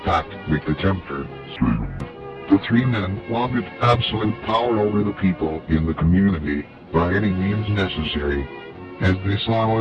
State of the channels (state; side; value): identical; both; correlation 1.00